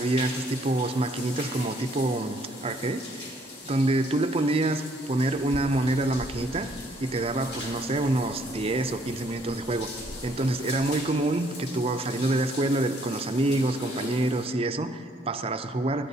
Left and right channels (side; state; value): both; normal; correlation 0.65